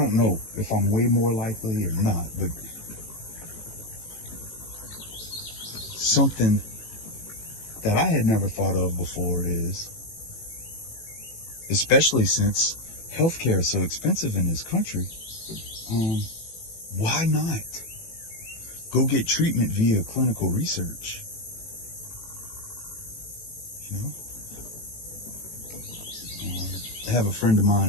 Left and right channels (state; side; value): late; right; 18 ms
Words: know if I'm way more likely or not, but something that I had never thought of before is, especially since healthcare is so expensive in this country, why not go get treatment via clinical research? You know? I have a friend of